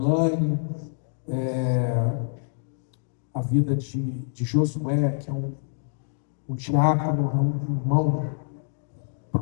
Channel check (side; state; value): right; silent; digital silence